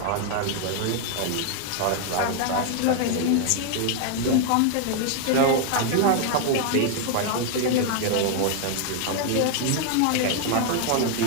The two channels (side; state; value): both; different; correlation 0.00